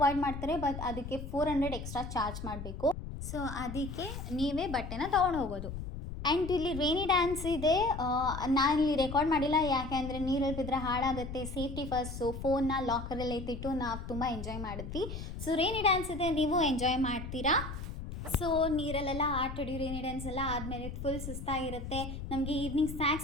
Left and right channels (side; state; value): left; noise; rumble, 8 dB below the sound